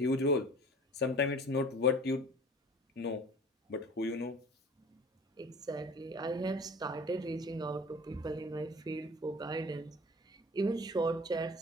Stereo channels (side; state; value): both; normal; correlation 0.44